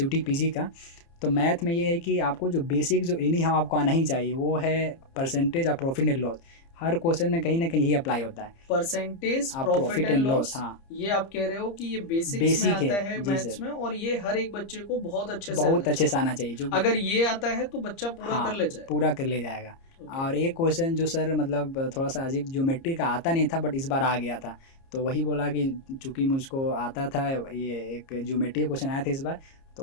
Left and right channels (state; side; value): late; right; 30 ms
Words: पीजी का, तो मैथ में ये है कि आपको जो बेसिक जो एनी हाउ आपको आना ही चाहिए वो है परसेंटेज और profit and loss. Her question में कहीं ना कहीं यही अप्लाई होता है। परसेंटेज, आप प्रॉफिट एंड लॉस, हाँ ये आप कह रहे हो कि ये बेसिक्स में बेसिक है आता है जी मैथ्स सर, में, और ये हर एक बच्चे को बहुत अच्छे से आना बहुत अच्छे से चाहिए। आना चाहिए जो अगर ये आता है तो बच्चा पूरा हाँ कर ले जाए। पूरा कर ले जाएगा। ओके, और एक क्वेश्चन जो सर मतलब थोड़ा सा अजीब, ज्योमेट्री का आता नहीं था बट इस बार आ गया था, तो वही बोला कि चूँकि मुझको आता था, ये एक ज्योमेट्री क्वेश्चन आया था इस बार,